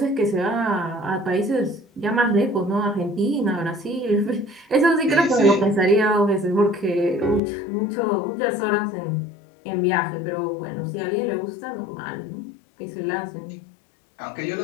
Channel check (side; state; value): right; drops out; at 7.4 s